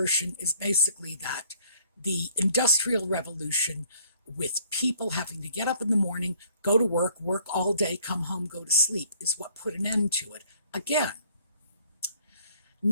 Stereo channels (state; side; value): inverted; both; correlation -0.60